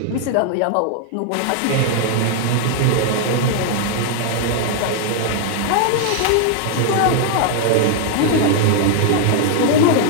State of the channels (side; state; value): both; different; correlation 0.00